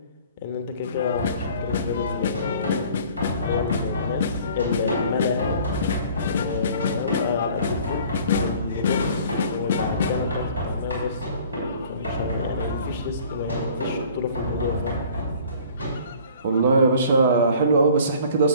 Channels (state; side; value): inverted; both; correlation -0.51